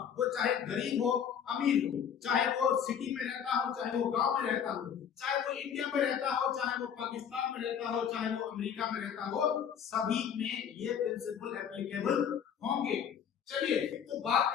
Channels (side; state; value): right; quieter; 8.1 dB